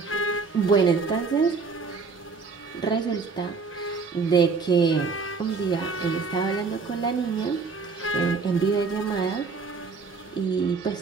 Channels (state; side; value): quieter; left; 4.7 dB